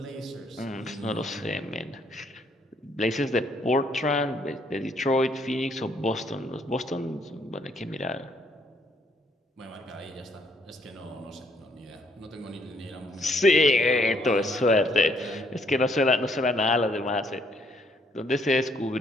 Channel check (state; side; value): normal; both; correlation 0.69